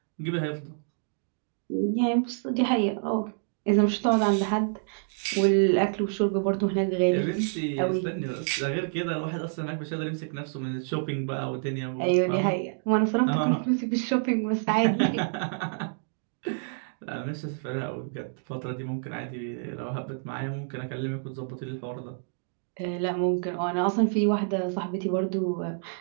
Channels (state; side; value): silent; left; digital silence